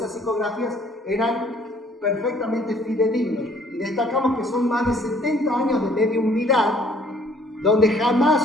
psicografías eran perfectamente fidedignos. Y destacamos que son más de 70 años de mediumnidad, donde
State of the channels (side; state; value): both; normal; correlation 0.60